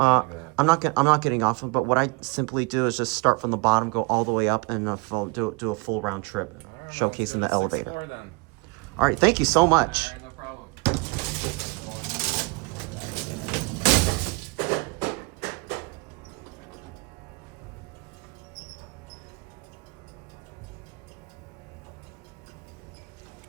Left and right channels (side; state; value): left; quieter; 28.3 dB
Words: not getting off, but what I simply do is just start from the bottom, go all the way up, and do a full round trip, Right, showcasing the elevator. Floor, then. All right, thank you so much. All right, no problem.